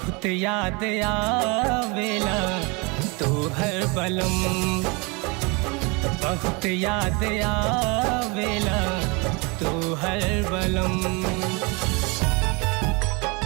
याद आवेला तोहर बलम, बहुत याद आवेला तोहर बलम।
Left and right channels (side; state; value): left; quieter; 29.1 dB